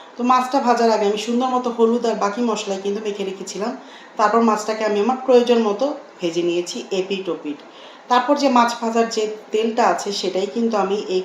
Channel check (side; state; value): both; identical; correlation 1.00